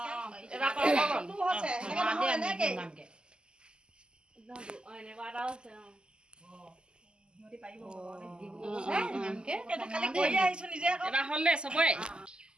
এবাৰ কৰিব হৈছে এনেকে এনেকুৱা এটা আছে সিহঁতি পাৰিব কালি কৰি আহিছো নিজে আকৌ এবাৰ হ'ল দে চবৰে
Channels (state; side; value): late; left; 0.048 ms